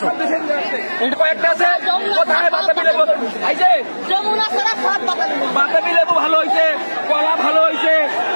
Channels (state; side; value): inverted; both; correlation -1.00